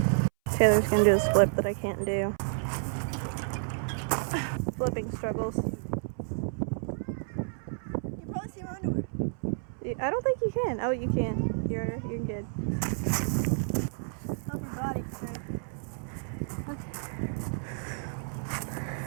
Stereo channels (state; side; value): silent; left; 57 dB below the other